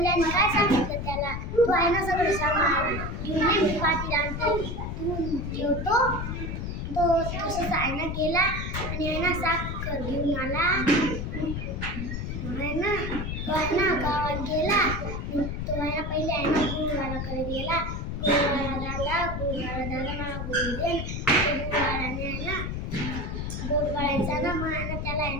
काय सांगितलं त्याला, तू आहे ना सगळं सामान घेऊन ये, मी पाठी आणते तू ठेवतो. तो तसंच आहे ना गेला आणि आहे ना साखर घेऊन आला. आहे ना तो आहे ना गावात गेला. तो आहे ना पहिले आहे ना गुळवाल्याकडे गेला. गुळवाला दादा मला गुळ दे. गुळवाल्याने आहे ना गोड पडायचा ना, मग आहे ना त्याला आहे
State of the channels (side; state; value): left; noise; rumble, 4 dB below the sound